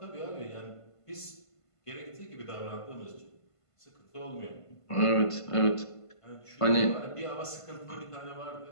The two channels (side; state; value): right; late; 1.5 ms